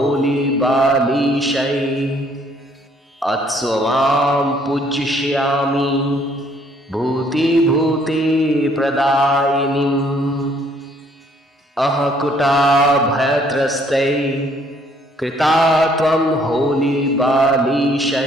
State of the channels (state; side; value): normal; both; correlation 0.64